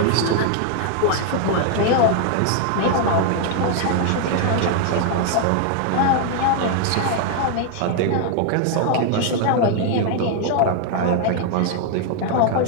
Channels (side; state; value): both; different; correlation 0.00